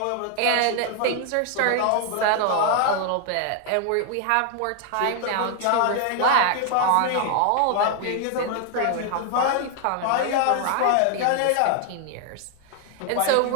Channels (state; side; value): different; both; correlation 0.00